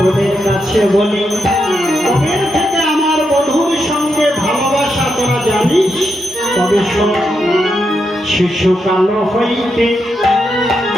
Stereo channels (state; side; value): normal; both; correlation 0.83